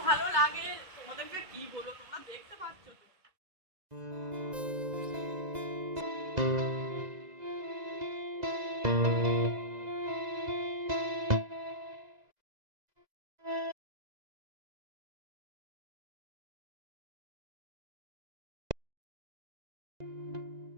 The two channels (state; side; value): late; left; 2.0 ms